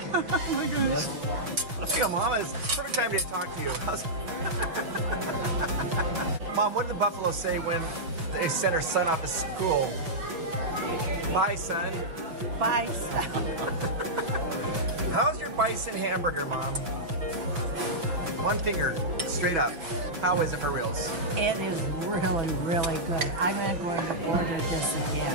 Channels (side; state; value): left; late; 6.1 ms